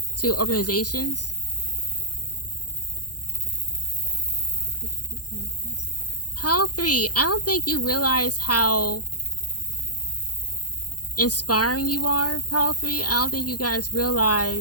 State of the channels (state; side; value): late; right; 0.69 ms